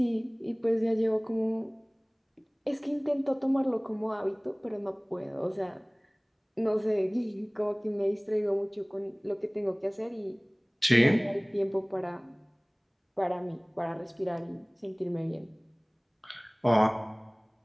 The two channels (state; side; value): identical; both; correlation 1.00